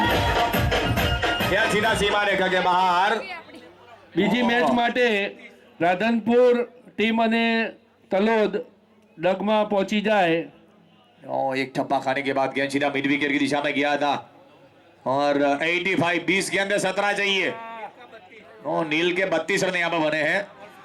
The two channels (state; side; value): identical; both; correlation 1.00